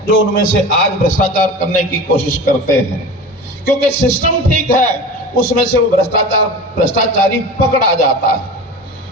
जो उनमें से आज भ्रष्टाचार करने की कोशिश करते हैं। क्योंकि सिस्टम ठीक है, उसमें से वो भ्रष्टाचारी पकड़ा जाता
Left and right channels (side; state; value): both; normal; correlation 0.33